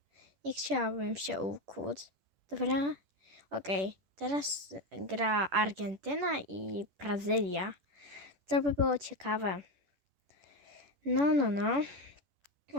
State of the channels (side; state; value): left; late; 11 ms